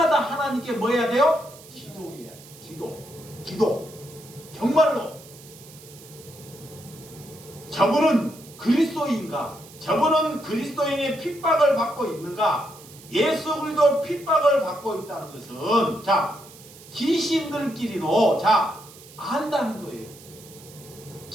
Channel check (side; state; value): right; noise; hiss, 20 dB below the sound